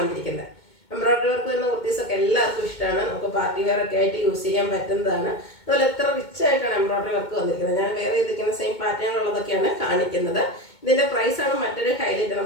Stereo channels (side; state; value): right; late; 2.2 ms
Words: വന്നിരിക്കുന്നത്. എംബ്രോയിഡറി വർക്ക് വരുന്ന കുർത്തീസൊക്കെ എല്ലാവർക്കും ഇഷ്ടമാണ്. നമുക്ക് പാർട്ടി വെയർ ഒക്കെ ആയിട്ട് യൂസ് ചെയ്യാൻ പറ്റുന്നതാണ്. അതുപോലെ എത്ര റിച്ച് ആയിട്ടാണ് എംബ്രോയിഡറി വർക്ക് വന്നിരിക്കുന്നത്. ഞാൻ വേറെ ചെയ്തിരിക്കുന്ന സെയിം പാറ്റേണുള്ളതൊക്കെയാണ് കാണിക്കുന്നത്. ഇതിൻ്റെ പ്രൈസാണ് മറ്റൊരു ഹൈലൈറ്റ്.